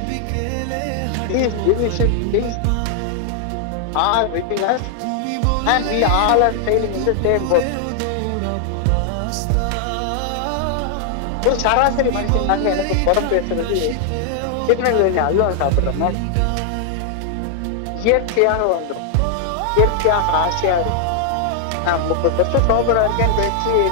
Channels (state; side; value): different; both; correlation -0.01